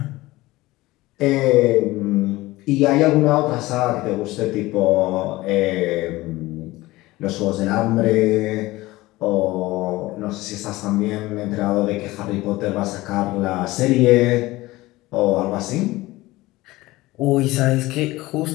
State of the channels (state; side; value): quieter; right; 19.1 dB